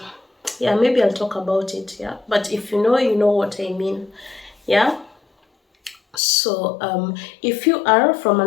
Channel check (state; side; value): drops out; right; at 6.2 s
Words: yeah, maybe I'll talk about it, yeah? But if you know what I mean, yeah? So if you are from